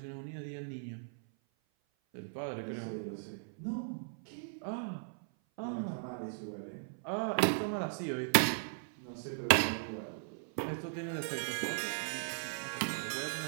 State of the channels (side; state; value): left; silent; 53 dB below the other